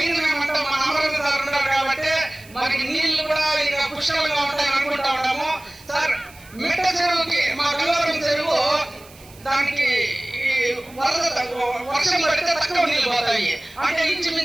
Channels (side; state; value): right; noise; hiss, 23 dB below the sound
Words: ఏమంటే మన అమరావతి సార్ ఉన్నారు కాబట్టి మనకి నీళ్లు కూడా ఇంకా పుష్కలంగా ఉంటాయని అనుకుంటా ఉంటాము సార్. మిట్ట చెరువుకి మా గంగవరం చెరువు దానికి వర్షం పడితే తక్కువ నీళ్లు పోతాయి. అంటే